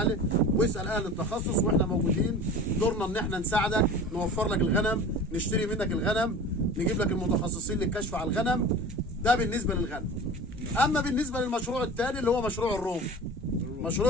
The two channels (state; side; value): normal; both; correlation 0.38